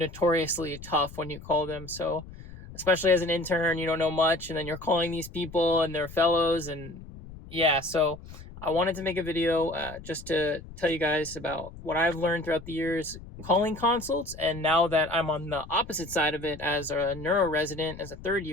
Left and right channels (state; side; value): noise; left; rumble, 16 dB below the sound